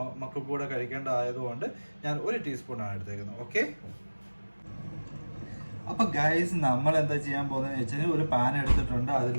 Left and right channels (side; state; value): both; inverted; correlation -1.00